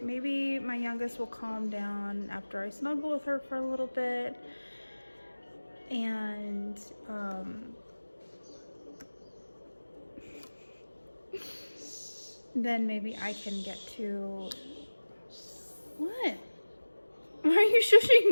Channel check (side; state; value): both; inverted; correlation -1.00